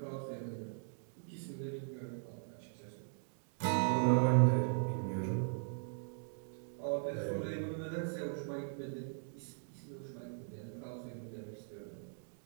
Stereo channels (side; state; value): left; silent; digital silence